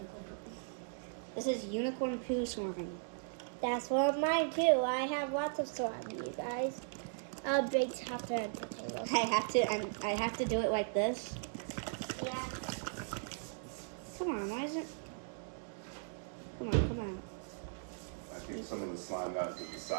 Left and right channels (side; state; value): left; silent; digital silence